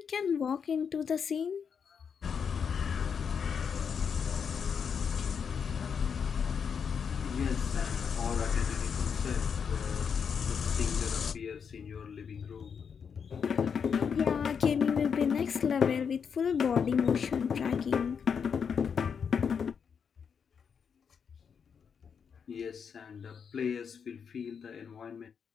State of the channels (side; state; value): right; quieter; 6.7 dB